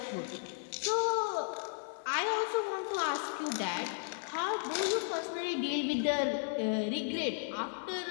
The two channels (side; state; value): right; silent; 55 dB below the other